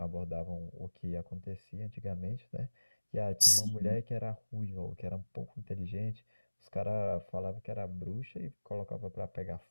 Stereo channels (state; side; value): inverted; both; correlation -1.00